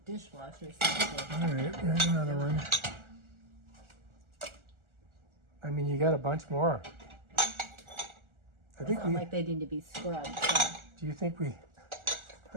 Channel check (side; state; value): left; late; 1.4 ms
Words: All right, here's another one. I mean, you got a bunch more. I think we... like they need to be scrubbed. So. Do you think we... I